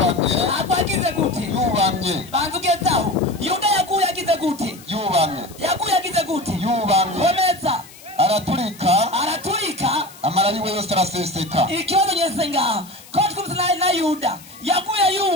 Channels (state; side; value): noise; left; hiss, 21 dB below the sound